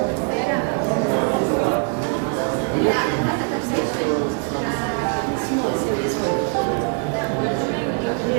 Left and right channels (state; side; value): quieter; left; 39.2 dB